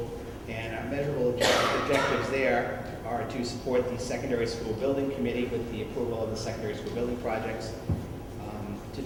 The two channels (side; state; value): both; identical; correlation 1.00